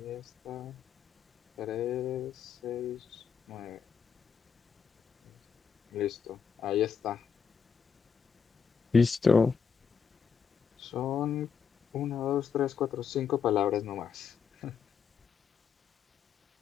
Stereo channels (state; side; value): quieter; right; 6.5 dB